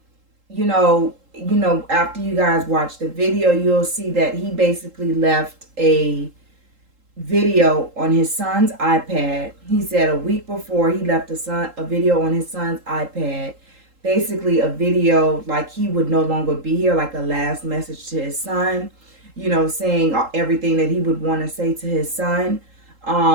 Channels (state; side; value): late; left; 3.8 ms